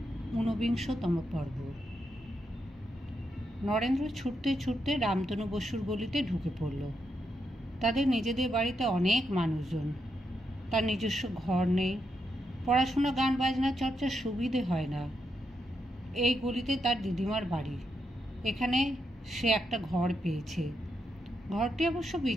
ঊনবিংশতম পর্ব। নরেন্দ্র ছুটতে ছুটতে রামতনু বসুর গলিতে ঢুকে পড়ল। তাদের নিজেদের বাড়িতে অনেক মানুষজন। তার নিজস্ব ঘর নেই, পড়াশোনা গান বাজনা চর্চার সুবিধে হয় না। এই গলিতে তার দিদিমার বাড়ি। এখানে সে একটা ঘর পেয়েছে। ঘরটি অবশ্য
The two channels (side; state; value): both; normal; correlation 0.82